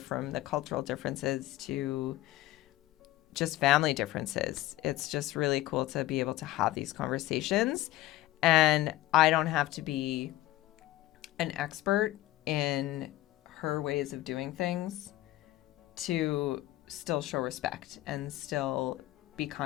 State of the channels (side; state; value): right; quieter; 15.8 dB